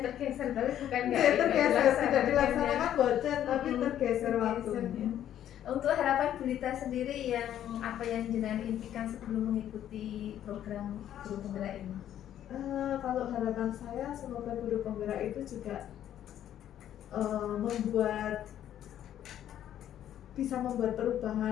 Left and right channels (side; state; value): right; quieter; 11.0 dB